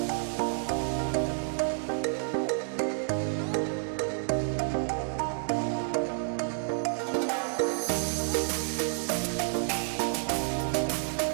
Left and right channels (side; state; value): left; silent; digital silence